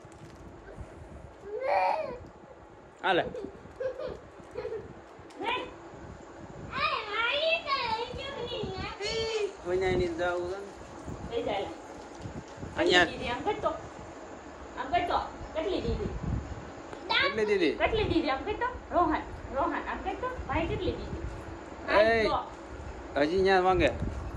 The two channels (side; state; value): both; identical; correlation 1.00